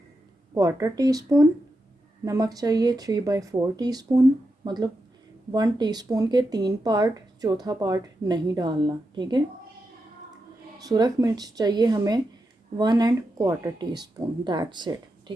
1/4 टीस्पून, नमक चाहिए 3/4 टीस्पून, मतलब 1 टीस्पून के 3 पार्ट, चौथा पार्ट नहीं डालना। ठीक है, सुरख मिर्च चाहिए हमें 1¼ टीस्पून। That's it.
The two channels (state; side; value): normal; both; correlation 0.87